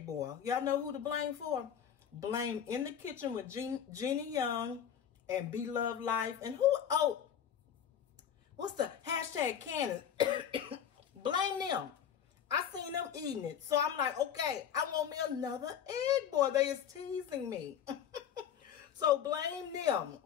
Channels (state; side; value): quieter; right; 8.9 dB